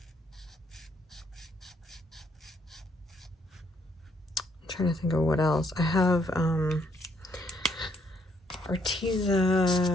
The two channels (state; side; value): normal; both; correlation 0.70